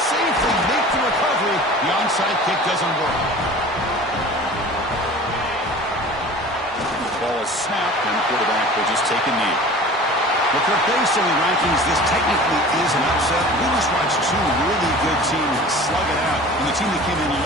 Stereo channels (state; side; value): normal; both; correlation 0.41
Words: makes the recovery, the onside kick doesn't work. The ball is snapped, and the quarterback will just take a knee. Look, based on the rankings, this technically is an upset. We just watched two really good teams slug it out, and the team that came in